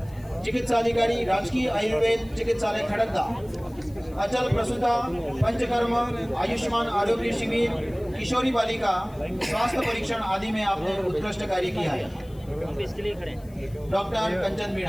चिकित्साधिकारी राजकीय आयुर्वेद चिकित्सालय खड़गदा, अचल प्रसूता पंचकर्म आयुष्मान आरोग्य शिविर किशोरी बालिका स्वास्थ्य परीक्षण आदि में आपने उत्कृष्ट कार्य किया है। हम इसके लिए खड़े हैं। डॉक्टर कंचन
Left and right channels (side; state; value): left; noise; hiss, 27 dB below the sound